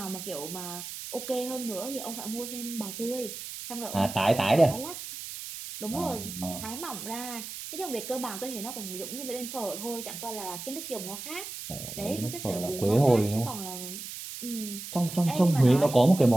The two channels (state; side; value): noise; right; hiss, 9 dB below the sound